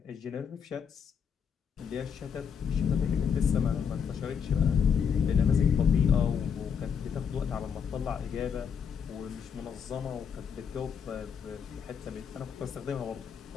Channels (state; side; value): quieter; right; 7.0 dB